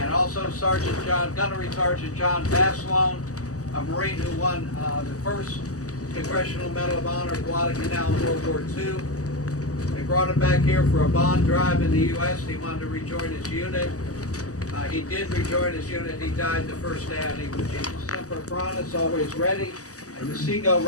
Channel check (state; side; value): late; right; 0.66 ms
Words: also Gunnery Sergeant John Baslone, a Marine who won the first Congressional Medal of Honor at Guadalcanal in World War II. They brought him back here for a bond drive in the U.S. He wanted to rejoin his unit. He did rejoin his unit. He died the first day on Iwo Jima. Semper Paratus, always ready. And the seagull